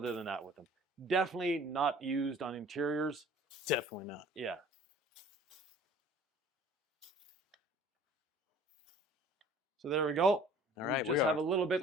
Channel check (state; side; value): normal; both; correlation 0.49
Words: than that with them. Definitely not used on interiors. Definitely not. Yeah. So there we go. All right. We just have a little bit